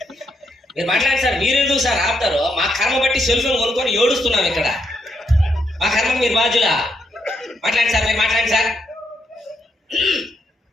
మీరు మాట్లాడండి సార్. మీరు ఎందుకు సార్ ఆపుతారు? మా కర్మ బట్టి సెల్ ఫోన్ కొనుక్కొని ఏడుస్తున్నాం ఇక్కడ. మా కర్మ మీరు బాధ్యులా? మాట్లాడండి సార్, మీరు మాట్లాడండి సార్.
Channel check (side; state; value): both; normal; correlation 0.78